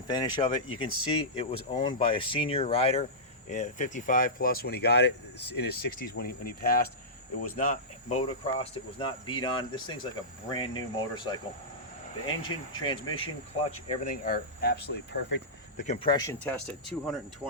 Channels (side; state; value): both; normal; correlation -0.15